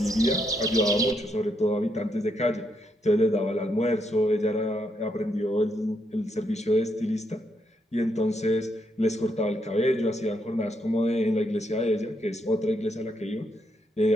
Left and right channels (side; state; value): both; normal; correlation 0.78